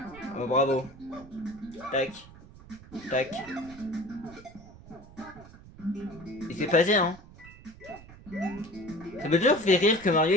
Oh, bravo. Tac, tac. Et c'est passé, hein. Ça m'a toujours fait rire que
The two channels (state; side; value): noise; right; rumble, 19 dB below the sound